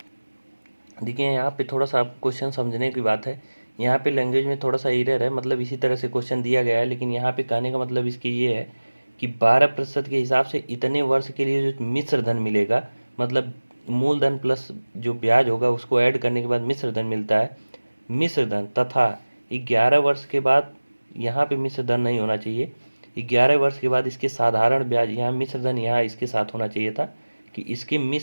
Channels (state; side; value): inverted; both; correlation -1.00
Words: देखिए यहाँ पे थोड़ा सा आप क्वेश्चन समझने की बात है, यहाँ पे लैंग्वेज में थोड़ा सा एरर है, मतलब इसी तरह से क्वेश्चन दिया गया है, लेकिन यहाँ पे कहने का मतलब इसकी ये है कि 12% के हिसाब से इतने वर्ष के लिए जो मिश्र धन मिलेगा, मतलब मूलधन प्लस जो ब्याज होगा उसको ऐड करने के बाद मिश्र धन मिलता है। मिश्र धन तथा 11 वर्ष के बाद, यहाँ पे मिश्र धन नहीं होना चाहिए, 11 वर्ष के बाद इसके साधारण ब्याज, यहाँ मिश्र धन यहाँ इसके साथ होना चाहिए था कि इसके